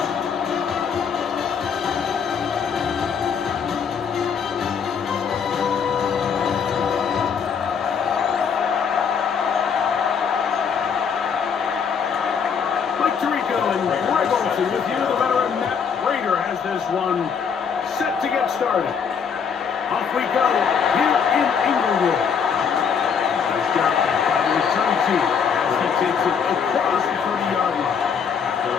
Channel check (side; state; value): right; quieter; 6.7 dB